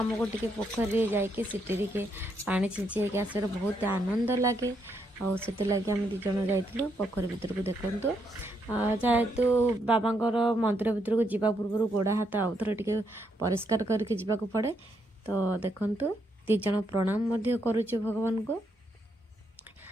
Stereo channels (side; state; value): both; normal; correlation 0.77